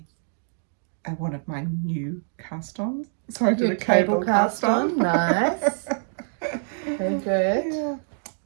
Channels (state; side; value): silent; left; digital silence